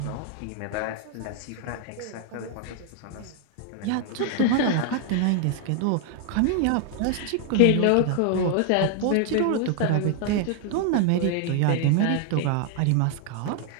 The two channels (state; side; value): different; both; correlation 0.00